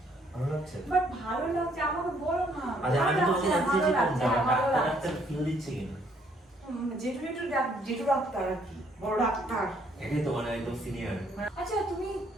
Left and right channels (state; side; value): normal; both; correlation 0.67